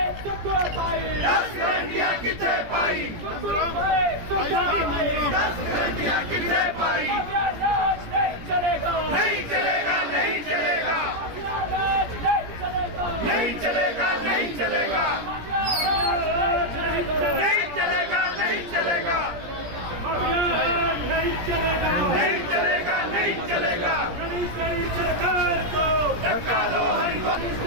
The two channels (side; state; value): left; late; 17 ms